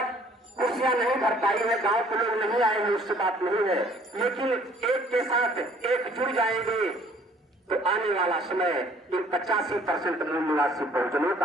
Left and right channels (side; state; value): both; normal; correlation 0.58